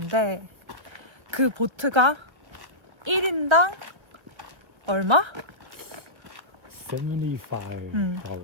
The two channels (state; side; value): late; left; 1.5 ms